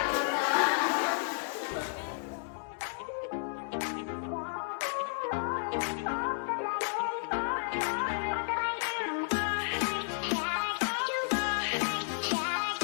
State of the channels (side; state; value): right; silent; digital silence